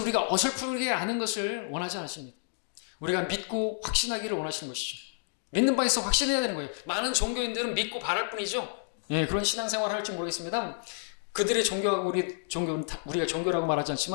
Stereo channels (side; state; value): right; silent; digital silence